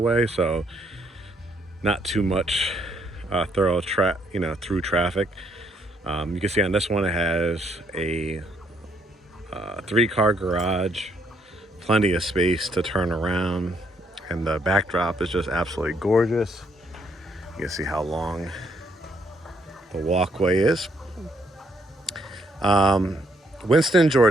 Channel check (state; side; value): normal; both; correlation 0.71